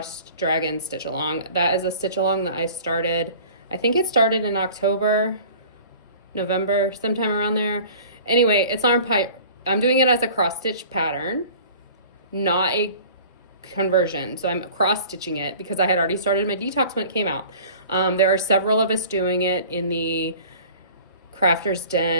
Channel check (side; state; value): both; inverted; correlation -0.45